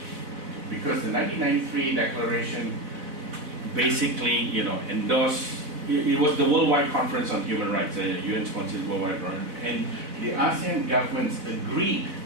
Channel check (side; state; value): left; late; 4.0 ms